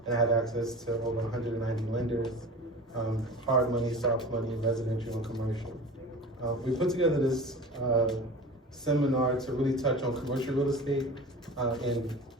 And I have access to over 190 lenders, hard money, soft money, residential and commercial. We put together this seminar to really touch on commercial real estate and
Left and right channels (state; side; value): normal; both; correlation 0.36